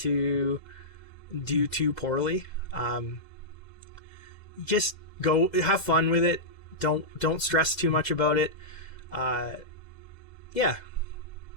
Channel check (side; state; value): right; late; 2.0 ms